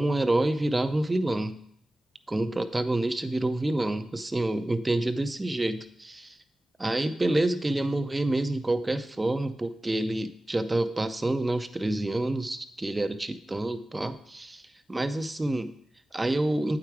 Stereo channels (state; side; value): normal; both; correlation 0.97